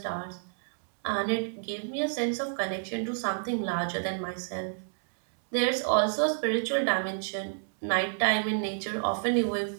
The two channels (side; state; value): left; silent; digital silence